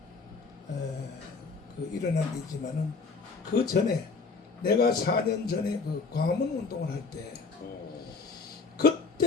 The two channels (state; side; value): quieter; right; 4.5 dB